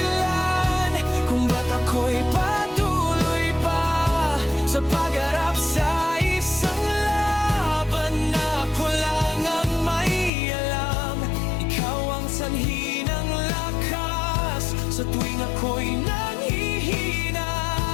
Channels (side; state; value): right; drops out; at 10.3 s